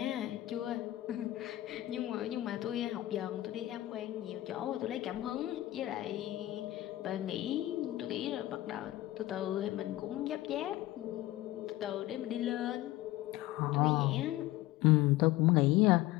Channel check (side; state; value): right; quieter; 16.2 dB